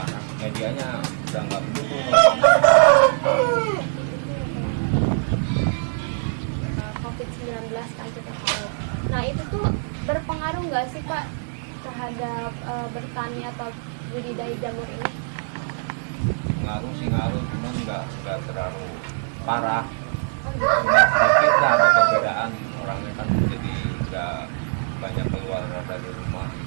Medianya udah nggak mendukung. COVID-19 kan kita tahu. Nah itu tuh berpengaruh nggak sih Pak terhadap bertani atau budidaya jamur ini? Ngaruh sih ngaruh, cuman nggak terlalu parah. Oh, gitu. Cuma sedikit lah ada perbedaan, orangnya kan jadi nggak banyak keluar dari rumah.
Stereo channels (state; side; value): silent; left; 63 dB below the other